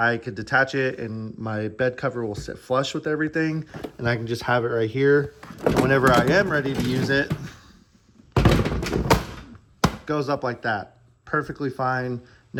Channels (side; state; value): both; identical; correlation 1.00